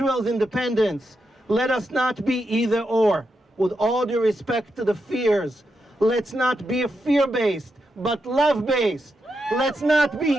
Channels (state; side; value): normal; both; correlation 0.85